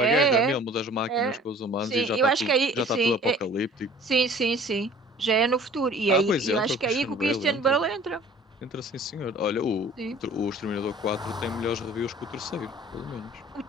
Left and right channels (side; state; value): both; normal; correlation 0.49